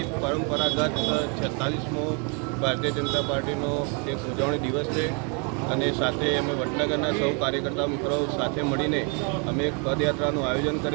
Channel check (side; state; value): left; quieter; 35.7 dB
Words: પરંપરાગત 46મો ભારતીય જનતા પાર્ટીનો એક ઉજવણી દિવસ છે અને સાથે અમે વડનગરના સૌ કાર્યકર્તા મિત્રો સાથે મળીને અમે એક પદયાત્રાનું આયોજન